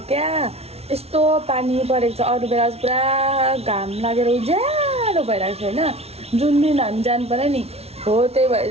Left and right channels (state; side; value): late; left; 0.30 ms